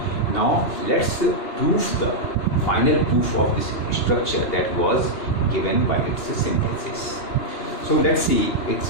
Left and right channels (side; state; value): right; late; 2.8 ms